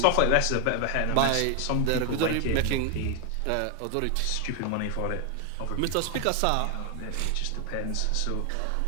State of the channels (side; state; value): both; different; correlation 0.00